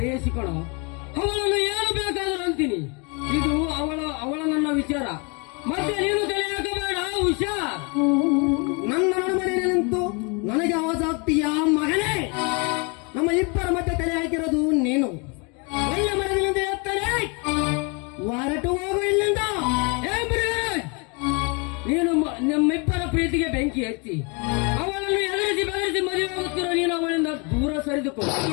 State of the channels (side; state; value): right; quieter; 32.2 dB